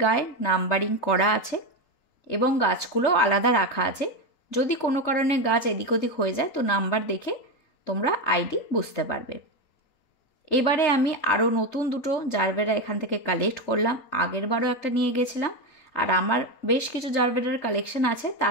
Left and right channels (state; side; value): late; right; 3.8 ms